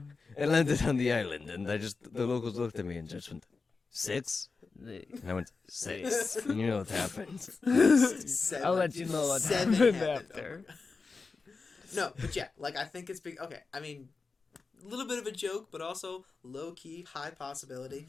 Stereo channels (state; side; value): quieter; right; 4.4 dB